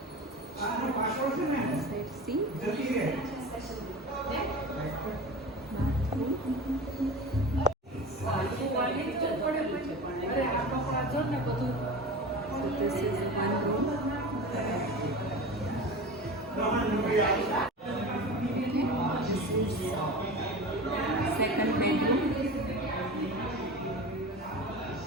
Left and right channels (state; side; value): normal; both; correlation 0.31